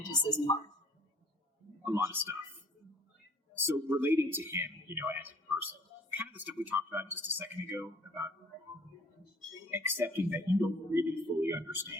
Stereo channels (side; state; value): both; normal; correlation 0.54